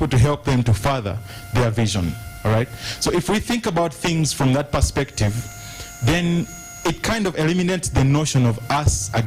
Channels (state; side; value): identical; both; correlation 1.00